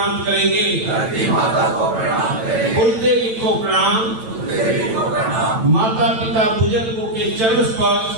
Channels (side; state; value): left; late; 9.0 ms